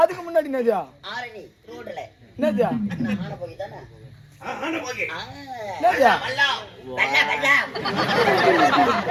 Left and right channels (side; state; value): both; identical; correlation 1.00